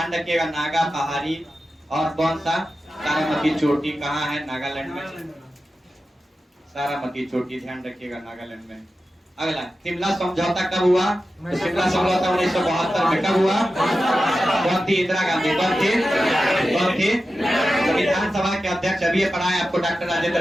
रखिएगा, नागा पहाड़ी और कौन सा? सारामती चोटी कहाँ है? नागालैंड में। सारामती चोटी, ध्यान रखिएगा, नागालैंड में। अगला, शिमला समझौता कब हुआ? तो शिमला समझौता 1972 में कब हुआ? कौन थी? इंदिरा गांधी। कौन थी? तो विधानसभा के अध्यक्ष, अभी ये पढ़ा है आपको, डॉक्टर राजेंद्र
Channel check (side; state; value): both; normal; correlation 0.92